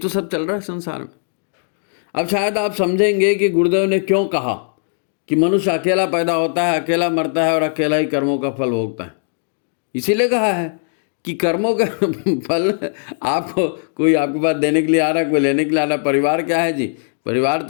सब चल रहा है संसार में। अब शायद आप समझेंगे कि गुरुदेव ने क्यों कहा कि मनुष्य अकेला पैदा होता है, अकेला मरता है और अकेला ही कर्मों का फल भोगता है। इसीलिए कहा है कि कर्मों का फल आपको, कोई आपके पास देने के लिए आ रहा है, कोई लेने के लिए आ रहा है। परिवार क्या है जी? परिवार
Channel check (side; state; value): right; silent; digital silence